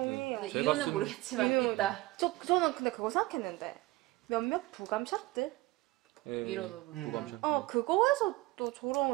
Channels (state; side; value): quieter; left; 20.0 dB